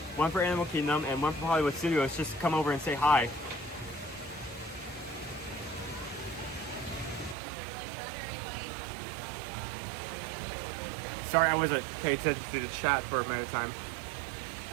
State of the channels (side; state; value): left; drops out; at 7.4 s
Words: Animal Kingdom and one for Hollywood Studios, just come over and say hi. Sorry, I wasn't paying attention to the chat for a minute of time.